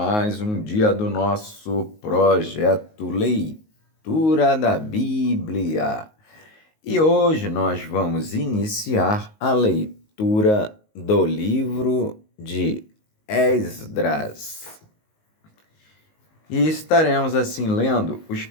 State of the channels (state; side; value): late; right; 19 ms